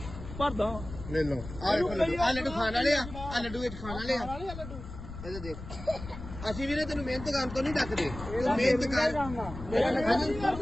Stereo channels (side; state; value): left; noise; rumble, 11 dB below the sound